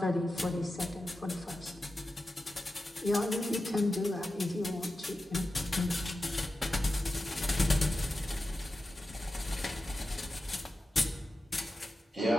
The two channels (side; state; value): both; normal; correlation 0.92